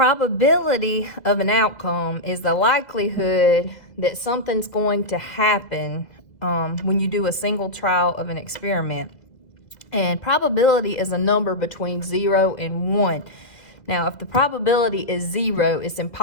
of an outcome is the likelihood that something's going to happen when you do a single trial of an experiment. And probability is a number between 0 and 1. Now, if the probability is 0, it's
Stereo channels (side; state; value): right; late; 2.1 ms